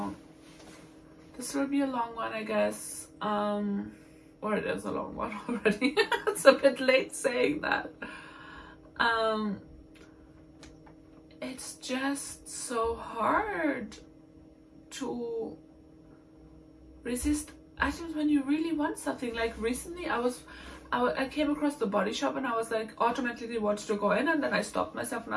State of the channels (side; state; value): both; identical; correlation 1.00